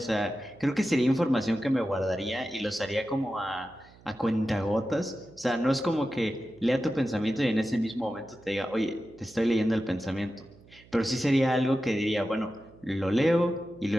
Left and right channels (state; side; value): noise; right; hum, 25 dB below the sound